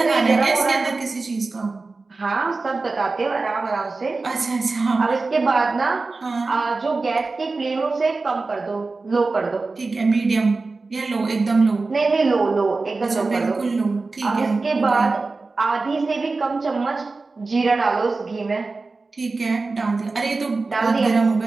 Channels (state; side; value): quieter; left; 3.8 dB